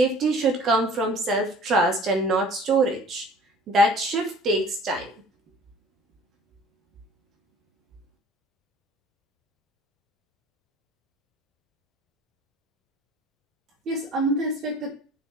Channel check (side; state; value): both; normal; correlation 0.49